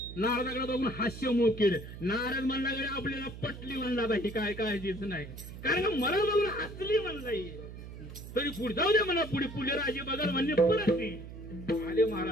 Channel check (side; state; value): right; noise; hum, 12 dB below the sound